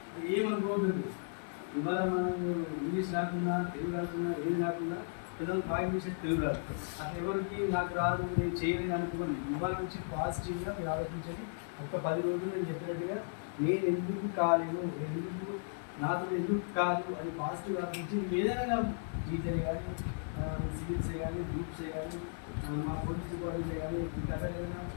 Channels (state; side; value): silent; right; digital silence